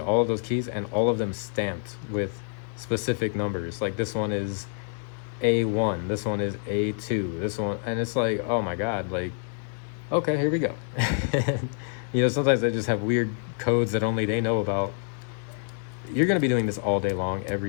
of those keys and all of them stamped with specific numbers. Like this one is A1, this one is A2, this one, and it's like, oh my God, like, okay, here we go. You know, sometimes they just have weird codes that only they know about. You're gonna be doing this all day long,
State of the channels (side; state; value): right; silent; 57 dB below the other